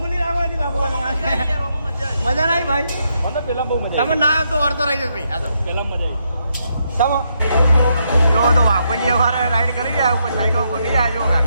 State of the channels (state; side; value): inverted; both; correlation -0.79